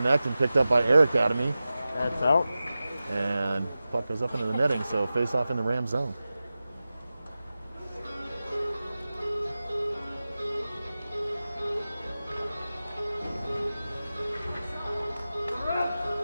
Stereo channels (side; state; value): both; inverted; correlation -0.95